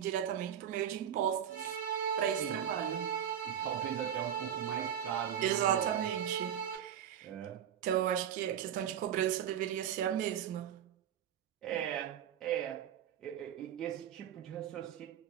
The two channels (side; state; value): left; quieter; 9.6 dB